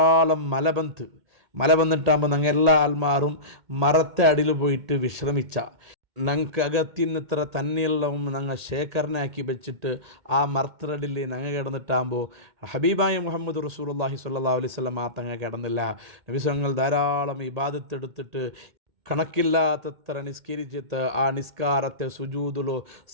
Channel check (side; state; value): left; late; 1.8 ms